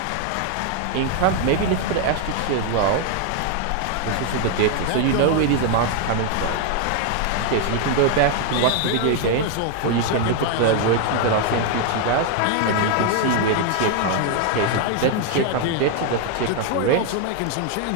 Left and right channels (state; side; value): different; both; correlation 0.00